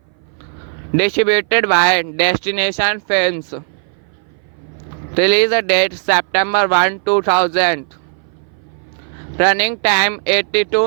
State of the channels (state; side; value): silent; left; 60 dB below the other